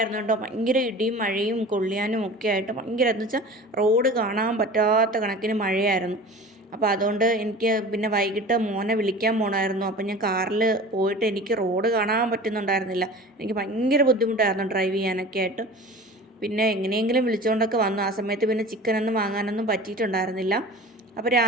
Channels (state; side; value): normal; both; correlation 0.38